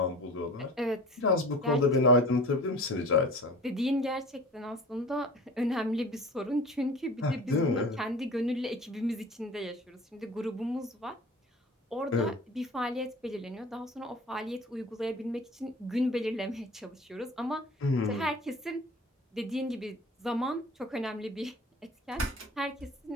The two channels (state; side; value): normal; both; correlation 0.41